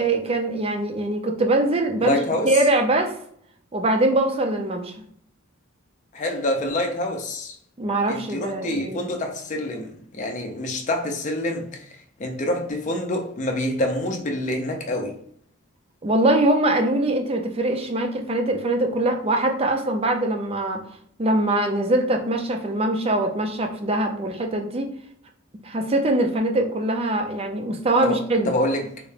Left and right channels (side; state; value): both; normal; correlation 0.22